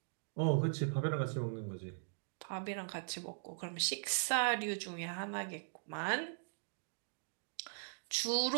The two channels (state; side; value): silent; left; digital silence